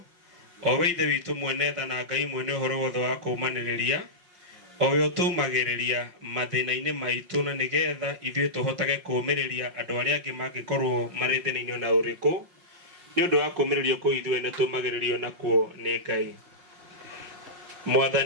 o we Ithe witũ mwene tha na Ngai mwene ũhoro wothe wa kũũmanĩrĩria, o we ũtũmagĩrĩria mathĩna-inĩ maitũ na nĩgetha ithuĩ tũhotage kũũmĩrĩria andũ arĩa angĩ mangĩkorwo marĩ thĩna-inĩ na ũrĩkũ, nĩ ũndũ wa kũũmĩrĩrio kũu ithuĩ nĩ tũmagĩrĩrio nakuo nĩ Ngai.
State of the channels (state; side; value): late; left; 5.5 ms